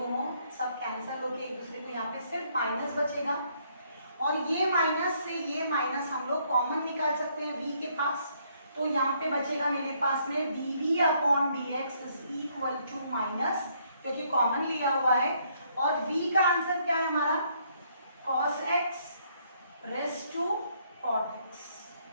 सब कैंसिल होके एक दूसरे को यहाँ पे सिर्फ माइनस बचेगा. और ये माइनस से ये माइनस हम लोग कॉमन निकाल सकते हैं v के पास. तो यहाँ पे बचेगा मेरे पास में dv upon dx is equal to minus, क्योंकि कॉमन लिया हुआ है. और v का आंसर क्या है हमारा cos x raise to cot x.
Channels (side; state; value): both; inverted; correlation -0.69